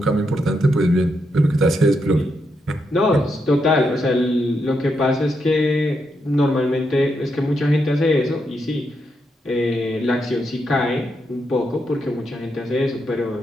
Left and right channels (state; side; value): normal; both; correlation 0.82